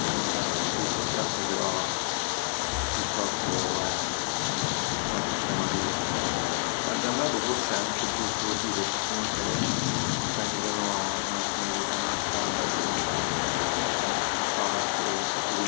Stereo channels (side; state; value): right; silent; 59 dB below the other